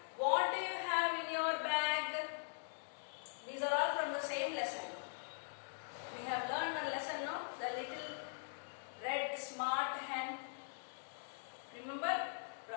What do you have in your bag? These are all from the same lesson. We have learned one lesson, no? The little red smart hen. Remember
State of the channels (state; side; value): silent; right; digital silence